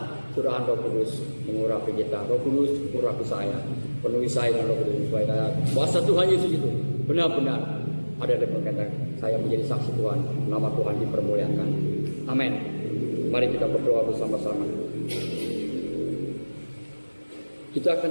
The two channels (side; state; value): both; inverted; correlation -1.00